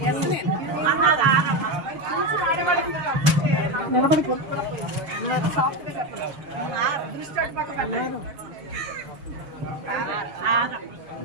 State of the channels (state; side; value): late; left; 6.8 ms